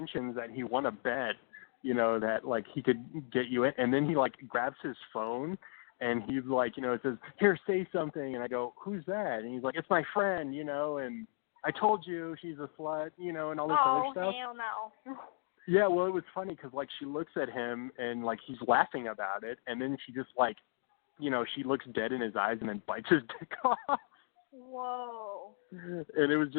that he won a bet, that, like, he could get you in, and then he, like, grabs his phone and he's like, it says, here, say something, and I go, who's that? And he's like, it's my friend, and I told you she's a slut, and all this other stuff. Oh, hell no. Yeah, well, it was funny because, like, she looks at him and, like, he's laughing about it, and then she just, like, she looks dead in his eyes and then bites his dick off. Whoa. And it was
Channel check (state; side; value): silent; right; digital silence